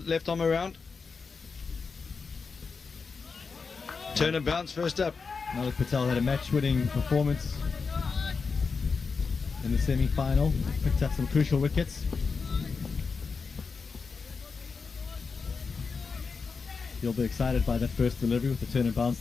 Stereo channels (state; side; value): quieter; right; 4.9 dB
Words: left arm around. Turn and bounce first up. Malak Patel had a match-winning performance in the semi-final. Picked up some crucial wickets. You'll be excited by that first delivery with the turn and bounce